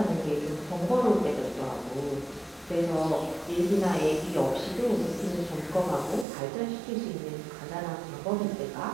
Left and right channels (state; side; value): drops out; left; at 6.2 s